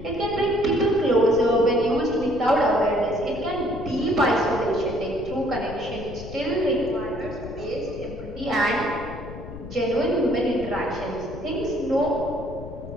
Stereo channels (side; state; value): left; noise; rumble, 12 dB below the sound